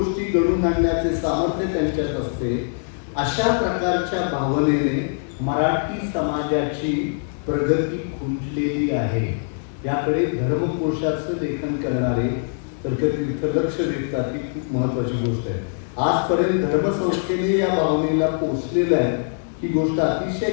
घडवून आणण्याचे सामर्थ्य त्यांच्यात असते. अशा प्रकारच्या भावनेने मराठी समाजाची प्रगती खुंटलेली आहे. याकडे धर्मकोशाचं लेखन करणारे तर्कतीर्थ लक्ष देतात ही खूप महत्वाची गोष्ट आहे. आजपर्यंत धर्मसंस्थेने या भावनेला पोचलेलं आहे ही गोष्ट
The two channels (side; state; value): right; silent; 64 dB below the other